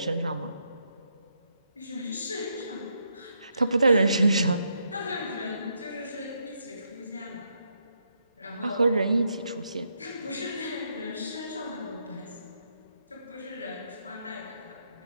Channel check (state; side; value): inverted; both; correlation -0.78